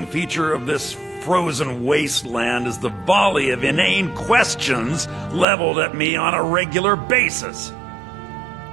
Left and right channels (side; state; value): left; drops out; at 5.5 s